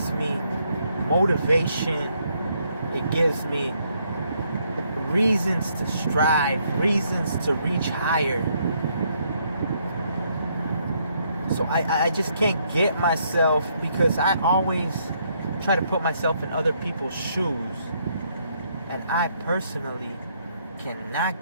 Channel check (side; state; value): both; inverted; correlation -0.72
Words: me motivation. It gives me reasons to strive, reasons to reach higher. So I just can't get myself, because I always try to put myself in other people's shoes, and I personally